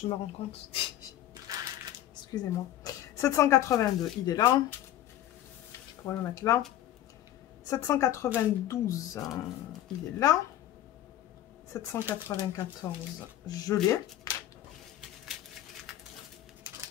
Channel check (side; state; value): right; quieter; 12.8 dB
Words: me rends compte. Excusez-moi. 782, il est là. Je pourrais le mettre là. 792, il est là. 794, je l'ai.